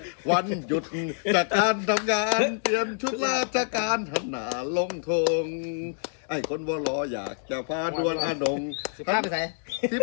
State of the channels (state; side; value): silent; right; 60 dB below the other